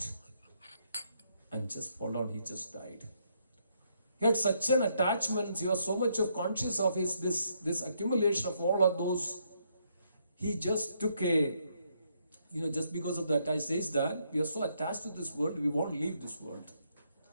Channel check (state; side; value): inverted; both; correlation -0.74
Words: and just fell down, he just died. He had such an attachment, he was so much of conscious of his this accumulation of all of those. He just took just because of that, I says that we are so attached to this world, we won't leave this world.